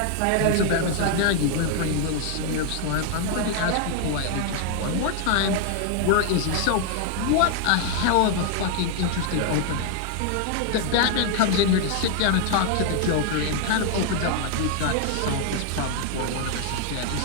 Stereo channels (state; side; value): different; both; correlation 0.00